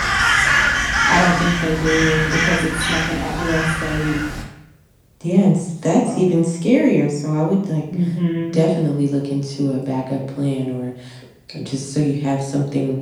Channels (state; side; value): identical; both; correlation 1.00